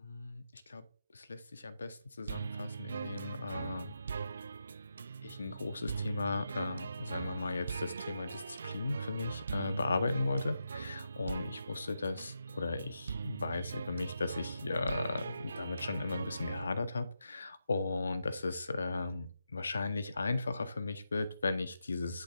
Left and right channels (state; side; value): inverted; both; correlation -0.86